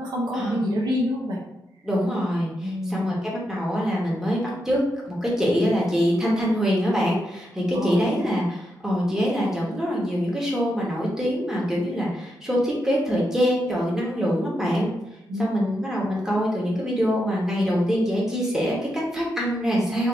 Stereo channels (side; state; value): both; normal; correlation 0.84